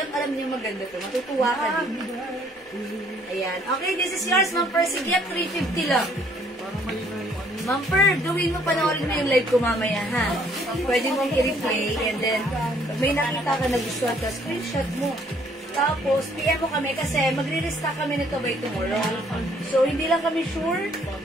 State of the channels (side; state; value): both; normal; correlation 0.63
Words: alam niyo maganda to. Matutuwa ka din. Ayan. Okay, this is yours, Ma'am Percy Gift. 350 lang. Ma'am Per, gawin mo, panoorin mo yung live ko mamaya, ha? Pwede mong i-replay and then pag may nakita ka na gustuhan ka, screenshot mo. Tapos, PM mo kami kasi magre-restock kami nito by tomorrow. So, hindi lang kami sure.